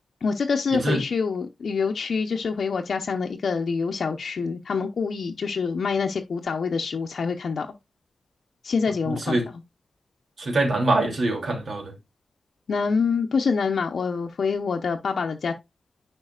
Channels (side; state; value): right; quieter; 3.1 dB